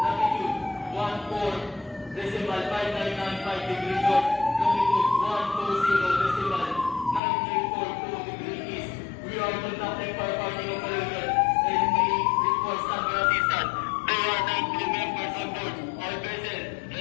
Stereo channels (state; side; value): drops out; right; at 7.2 s